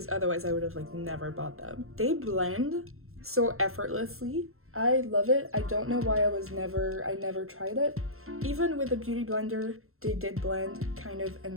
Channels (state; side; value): late; left; 0.62 ms